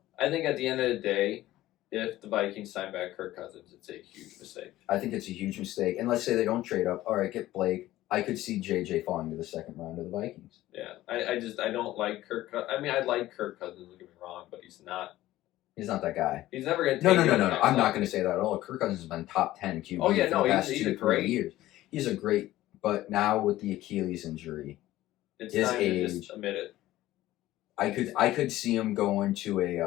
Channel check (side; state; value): right; quieter; 15.5 dB